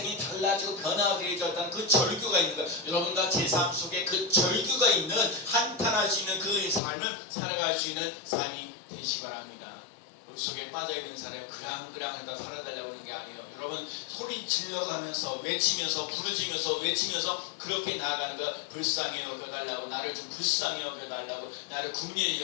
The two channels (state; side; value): drops out; right; at 6.8 s